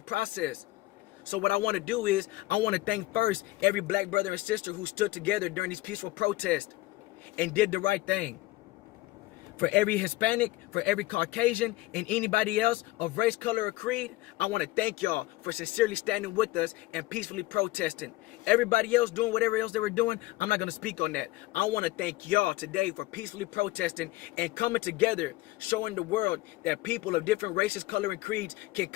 process. So what I want to do is, I want to thank first every black brother and sister who stood together during these peaceful protests and did the right thing. For every Hispanic, for every Caucasian, and anybody else of race, color, or creed, I want to thank y'all for sincerely standing with us and peacefully protesting. Everybody else doing whatever else they were doing, I'm not going to speak on that. I want to thank y'all today for peacefully protesting and coming together, showing the world that people of different races, color, and creeds can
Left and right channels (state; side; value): quieter; right; 18.9 dB